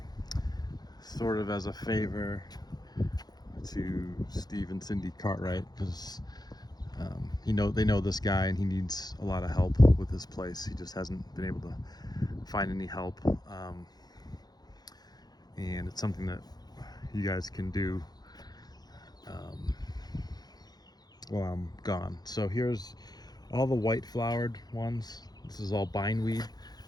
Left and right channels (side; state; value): right; late; 0.19 ms